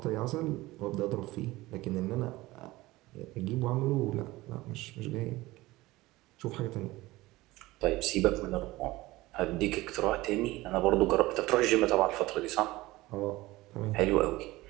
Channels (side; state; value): left; quieter; 19.1 dB